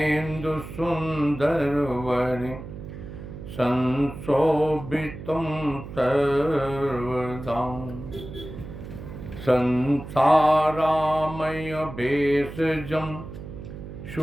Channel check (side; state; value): right; noise; hum, 11 dB below the sound